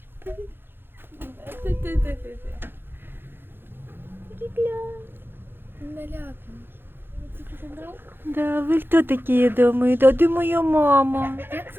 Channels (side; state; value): left; late; 0.10 ms